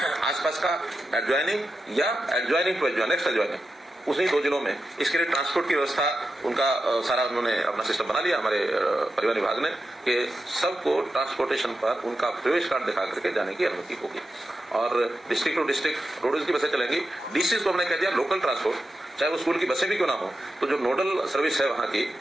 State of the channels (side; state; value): both; normal; correlation 0.90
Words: आसपास का एडजॉइनिंग या adjoining to adjoin, next adjoining उन्हीं 2 जिलों में। इसके लिए ट्रांसपोर्ट की व्यवस्था उनका सारा उन्होंने अपना सिस्टम बना लिया हमारे परिवहन विभाग ने कि सबको ट्रांसपोर्टेशन पर उनका प्रवेश कार्ड दिखा करके जाने की अनुमति होगी। और डिस्ट्रिक्ट टू डिस्ट्रिक्ट रोडवेज की बसें चलेंगी। DCs को हमने कह दिया लोकल ट्रांसपोर्ट, चाहे वो स्कूल की बसें भी क्यों ना हो, तो जो नोडल सर्विस है वहां की,